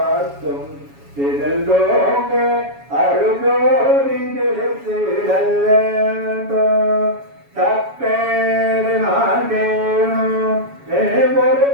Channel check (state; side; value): late; left; 7.2 ms